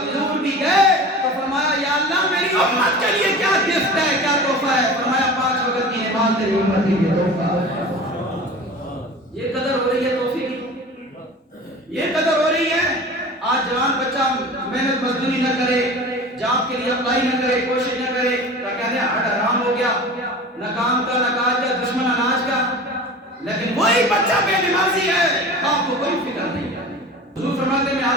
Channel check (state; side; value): normal; both; correlation 0.37